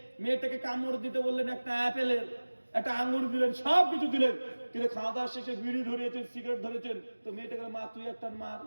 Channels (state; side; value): inverted; both; correlation -1.00